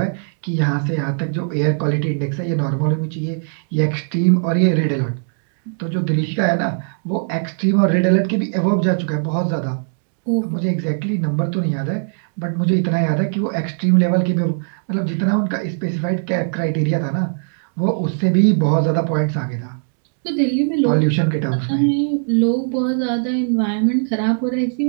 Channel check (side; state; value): left; silent; digital silence